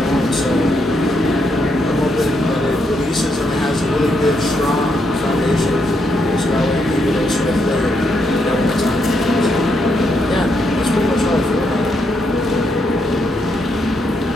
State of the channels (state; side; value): normal; both; correlation 0.78